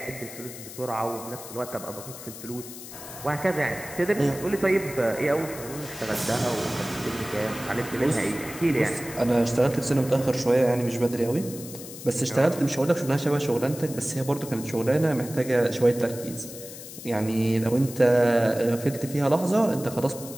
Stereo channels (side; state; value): left; noise; hiss, 13 dB below the sound